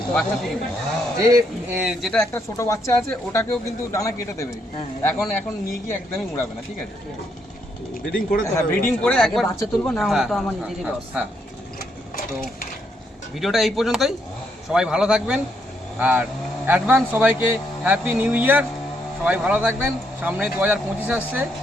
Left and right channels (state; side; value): normal; both; correlation 0.76